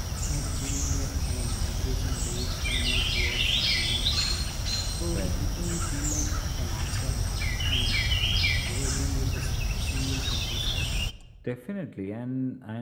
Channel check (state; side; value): identical; both; correlation 1.00